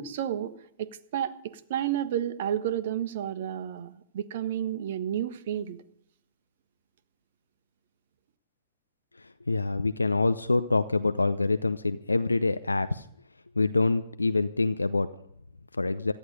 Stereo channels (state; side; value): inverted; both; correlation -0.80